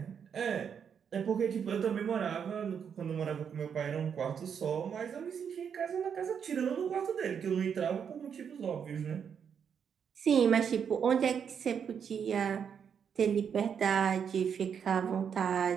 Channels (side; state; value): left; quieter; 7.4 dB